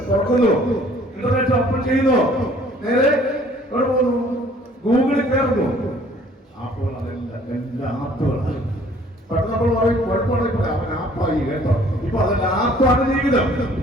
തുറക്കുന്നു, ഇന്റർനെറ്റ് ഓപ്പൺ ചെയ്യുന്നു, നേരെ എവിടെ പോകുന്നു? ഗൂഗിളിൽ കയറുന്നു. അപ്പോൾ എല്ലാ ആപ്പുകളാണ്. പെട്ടെന്ന് നമ്മൾ പറയും കുഴപ്പമുണ്ടെങ്കിൽ അവൻ ആപ്പായി കേട്ടോ. ഇപ്പൊ അതെല്ലാം ആപ്പാണ് ജീവിതം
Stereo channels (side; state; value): both; normal; correlation 0.56